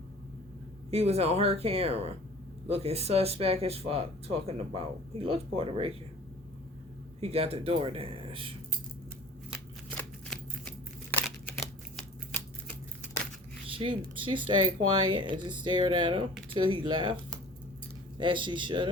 He was on her camera, looking suspect as fuck, talking about. He looks Puerto Rican. He got the DoorDash. She stayed quiet and just stared at him till he left, as she should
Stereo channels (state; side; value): normal; both; correlation 0.45